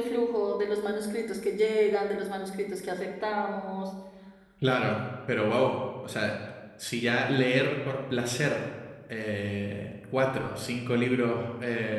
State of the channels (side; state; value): both; identical; correlation 1.00